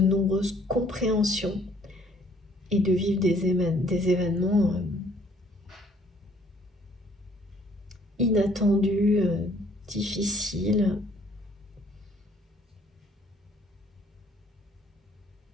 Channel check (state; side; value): normal; both; correlation 0.61